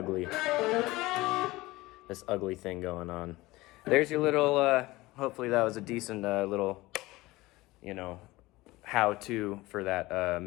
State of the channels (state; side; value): quieter; right; 19.8 dB